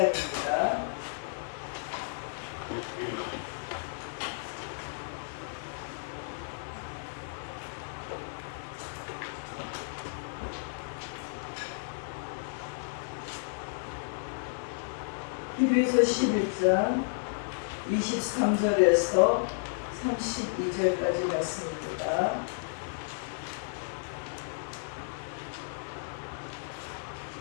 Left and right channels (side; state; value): right; silent; digital silence